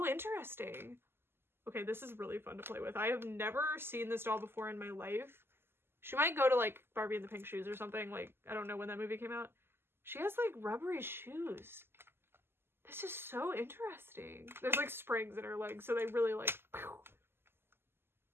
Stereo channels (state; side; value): late; left; 0.11 ms